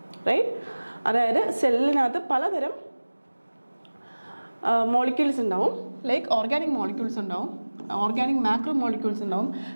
right. അതായത് സെല്ലിനകത്ത് പലതരം മോളിക്യൂൾസ് ഉണ്ടാവും, ലൈക്ക് ഓർഗാനിക് മോളിക്യൂൾസ് ഉണ്ടാവും, ഓർഗാനിക് മാക്രോ മോളിക്യൂൾസ് ഉണ്ടാവും,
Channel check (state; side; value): inverted; both; correlation -1.00